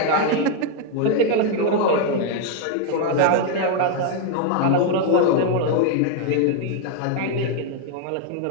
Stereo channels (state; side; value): different; both; correlation 0.00